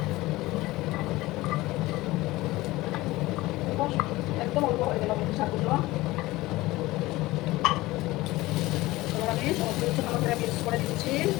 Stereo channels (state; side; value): quieter; right; 19.1 dB